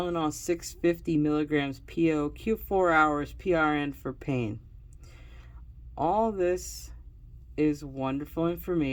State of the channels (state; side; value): identical; both; correlation 1.00